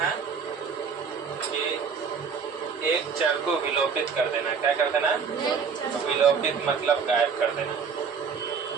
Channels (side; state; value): left; quieter; 6.0 dB